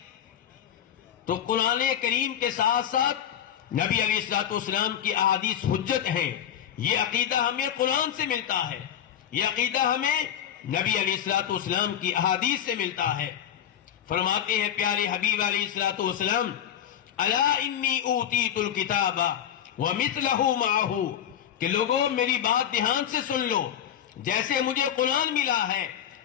تو قرآن کریم کے ساتھ ساتھ نبی علیہ الصلوۃ والسلام کی احادیث حجت ہیں. یہ عقیدہ ہمیں قرآن سے ملتا ہے، یہ عقیدہ ہمیں نبی علیہ الصلوۃ والسلام کی احادیث سے ملتا ہے. فرماتے ہیں پیارے حبیب علیہ الصلوۃ والسلام الا انی اوتیت الکتاب ومثلہ معہ کہ لوگوں میری بات دھیان سے سن لو، جیسے مجھے قرآن ملا ہے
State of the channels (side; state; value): right; quieter; 9.8 dB